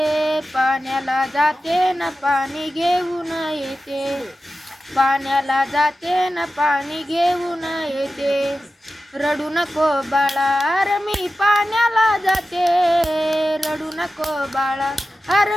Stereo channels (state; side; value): normal; both; correlation 0.93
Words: पाण्याला जाते न पाणी घेऊन येते. पाण्याला जाते न पाणी घेऊन येते. रडू नको बाळा, अरे मी पाण्याला जाते. रडू नको बाळा, अरे